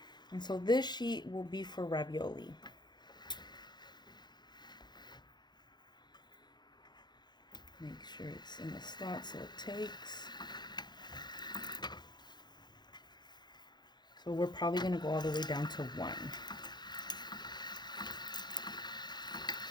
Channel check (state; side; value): late; right; 0.21 ms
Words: And so this sheet will be for ravioli. Make sure it's in the slot so it takes. So we're probably going to go all the way down to 1.